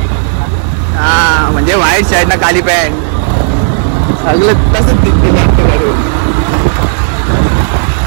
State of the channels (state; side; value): silent; left; digital silence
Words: हा म्हणजे व्हाईट शर्ट ना काली पॅन्ट सगळं तसंच दिसते.